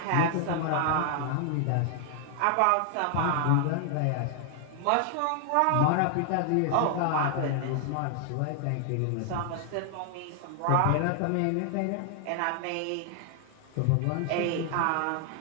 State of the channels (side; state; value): both; different; correlation 0.00